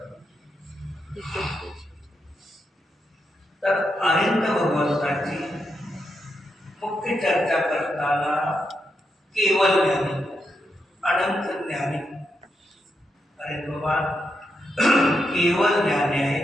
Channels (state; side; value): normal; both; correlation 0.83